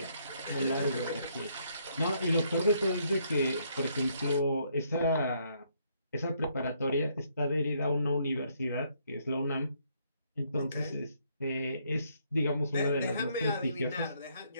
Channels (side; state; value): both; inverted; correlation -0.71